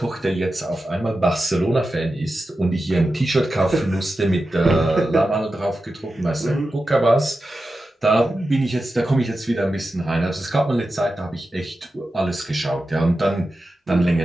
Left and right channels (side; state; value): both; normal; correlation 0.92